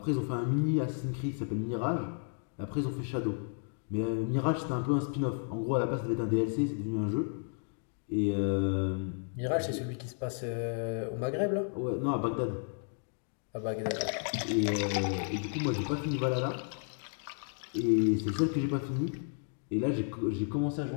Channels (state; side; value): silent; right; 56 dB below the other